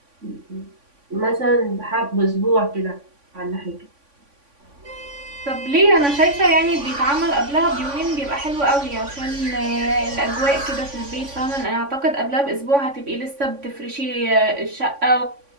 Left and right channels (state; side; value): late; left; 3.5 ms